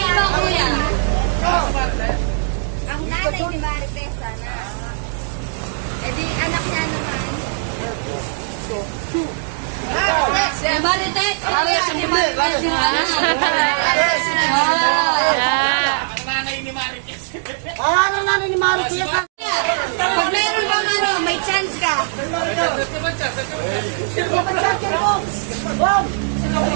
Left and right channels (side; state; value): left; silent; digital silence